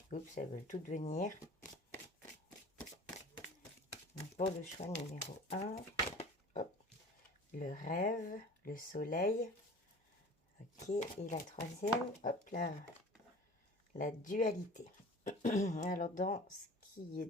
Oups, elles veulent toutes venir. Donc, pour le choix numéro 1, hop, le rêve, le soleil. Ok, et la troisième, hop là, la dualité. Alors, dans ce qui est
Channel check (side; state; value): both; normal; correlation 0.42